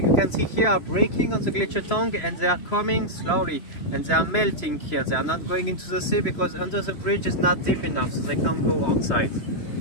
you can see here are breaking on the glacier tongue, and they are coming slowly, and they are melting here. They are not going into the sea because under the bridge is not deep enough, so they can't go outside.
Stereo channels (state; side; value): late; right; 3.0 ms